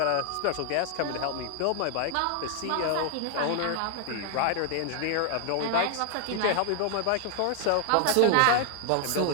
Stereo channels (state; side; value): different; both; correlation 0.00